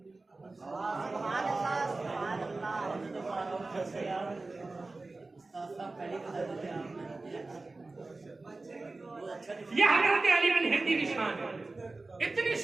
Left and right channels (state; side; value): quieter; left; 3.4 dB